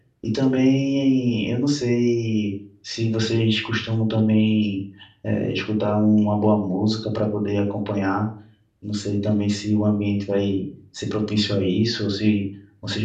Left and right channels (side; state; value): both; identical; correlation 1.00